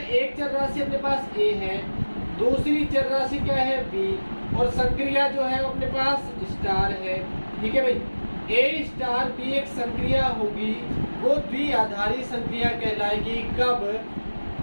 एक चर राशि अपने पास a है, दूसरी चर राशि क्या है b, और संक्रिया जो है अपने पास स्टार है। ठीक है भाई, A स्टार B एक संक्रिया होगी, वो द्विआधारी संक्रिया कहलाएगी। कब?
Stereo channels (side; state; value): both; inverted; correlation -1.00